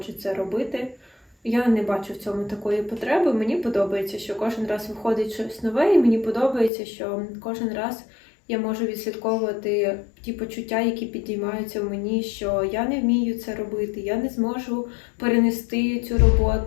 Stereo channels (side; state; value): right; drops out; at 6.7 s